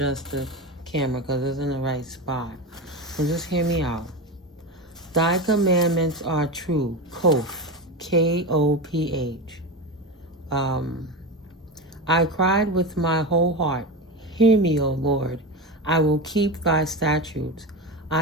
the camera because it's in the right spot. So just hear me out. Thy commandments are true. Koph. K-O-P-H. I cried with my whole heart. Hear me, O Lord. I will keep thy statutes.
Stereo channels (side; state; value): both; normal; correlation 0.21